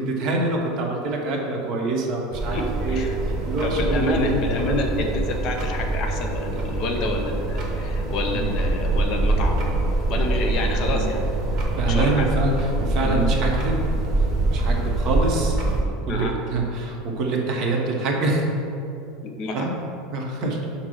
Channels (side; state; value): both; normal; correlation 0.48